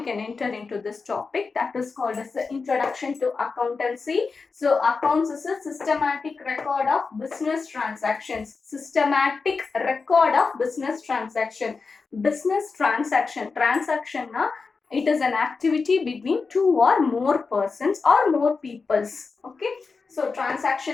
can enter into this topic that is called as the Introduction to Accountancy. So accounts is a systematic record of business transactions. Systematic record of business transaction. Business transaction na it is an activity between two or more persons or more peoples. Okay, so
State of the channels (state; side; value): quieter; right; 4.6 dB